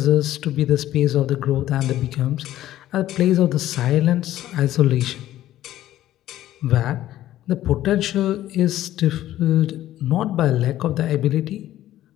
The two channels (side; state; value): right; quieter; 13.6 dB